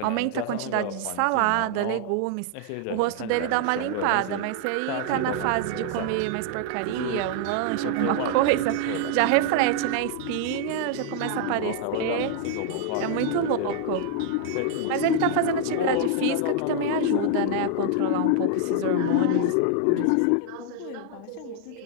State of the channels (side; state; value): both; different; correlation 0.00